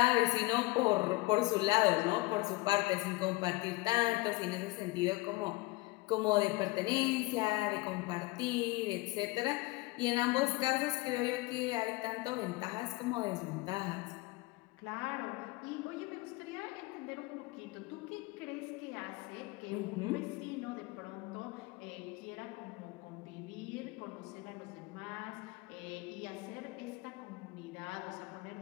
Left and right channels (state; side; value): quieter; right; 21.7 dB